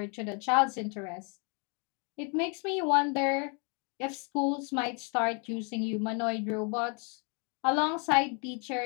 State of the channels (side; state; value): right; quieter; 36.1 dB